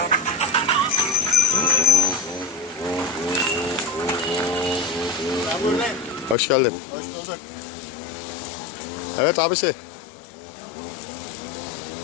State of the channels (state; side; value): drops out; right; at 6.4 s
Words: Ben buradayım. Hoş geldin. Hoş bulduk. Evet abisi.